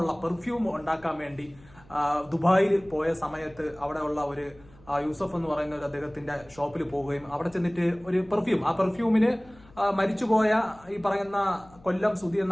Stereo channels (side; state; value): left; noise; hum, 26 dB below the sound